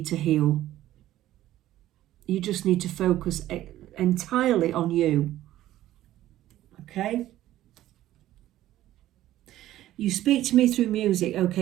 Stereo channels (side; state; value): left; quieter; 14.0 dB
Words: to heal. You just need to focus entirely on you. Okay? You speak to me through music.